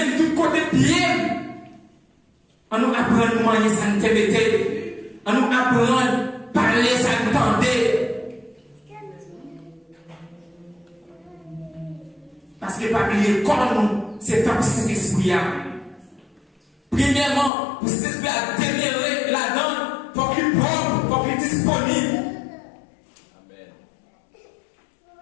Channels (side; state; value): right; drops out; at 17.5 s